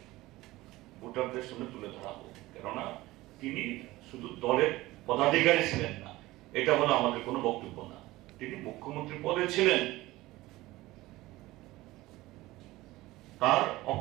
ভোটারদের সামনে তুলে ধরা হোক, কেননা তিনি শুধু দলের পদাধিকারী ছিলেন না, এটা হলো আমাদের কোনো বক্তব্য না, তিনি মুখ্যমন্ত্রী পদে ছিলেন। তার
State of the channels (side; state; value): left; quieter; 18.5 dB